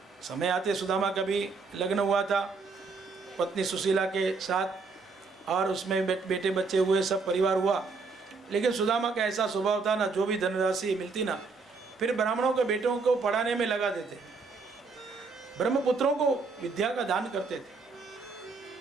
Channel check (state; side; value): quieter; left; 4.4 dB